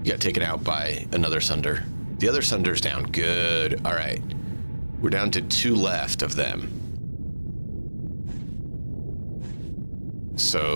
He got taken out by another Sunder. The other Sunder's down. Good. All right. We're down to 2 left of them.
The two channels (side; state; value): both; inverted; correlation -1.00